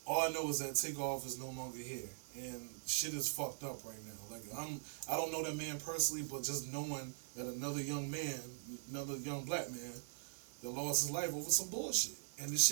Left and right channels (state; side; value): silent; left; digital silence